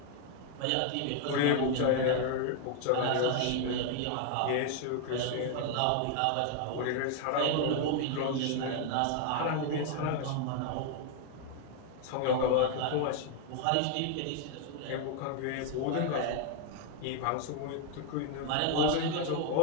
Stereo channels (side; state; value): both; different; correlation 0.00